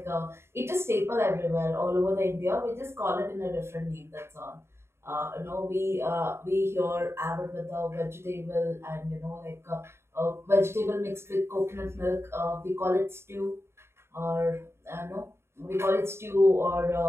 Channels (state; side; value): late; left; 0.12 ms